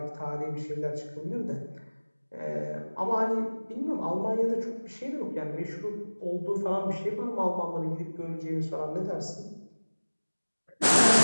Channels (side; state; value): both; inverted; correlation -1.00